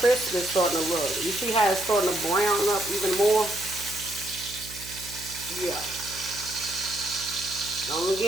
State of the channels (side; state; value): right; noise; hum, 16 dB below the sound